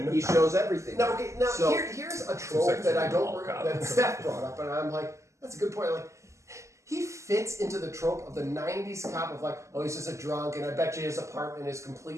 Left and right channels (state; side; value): late; left; 0.14 ms